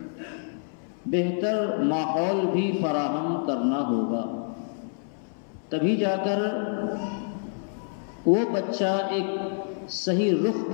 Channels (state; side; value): silent; right; 60 dB below the other